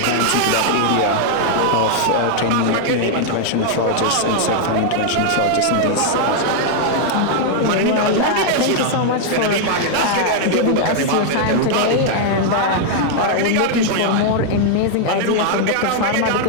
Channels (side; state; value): both; different; correlation 0.00